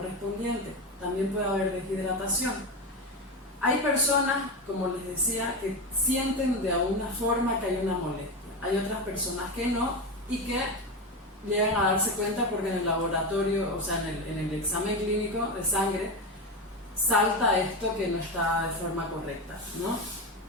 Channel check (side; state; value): both; normal; correlation 0.17